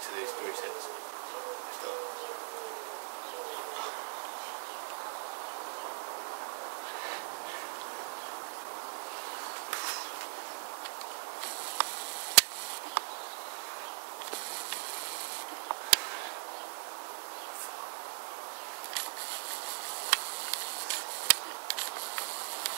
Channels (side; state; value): left; silent; digital silence